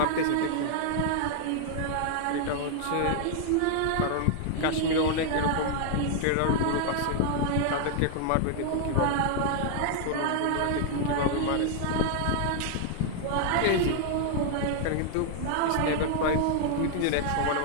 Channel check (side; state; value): both; different; correlation 0.00